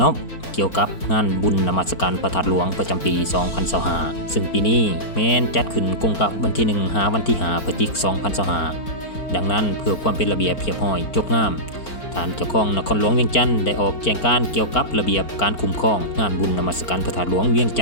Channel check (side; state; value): right; late; 4.4 ms